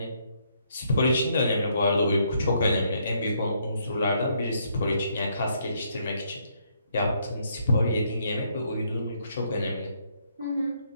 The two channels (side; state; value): both; inverted; correlation -0.72